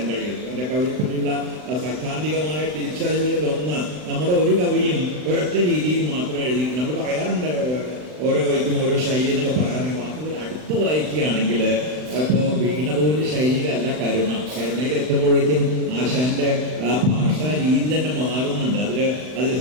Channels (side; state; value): left; late; 39 ms